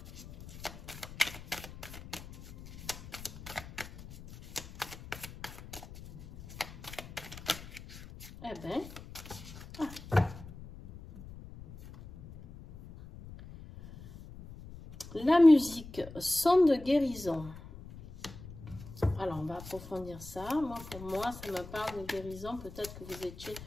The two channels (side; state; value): left; noise; rumble, 15 dB below the sound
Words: Eh bien, la musique, son de guérison. Alors, on va approfondir ça. Moi, pour moi, ça me parle de guérison. Peut-être que vous étiez